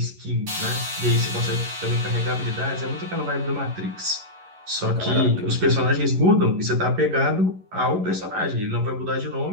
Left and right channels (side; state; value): left; late; 11 ms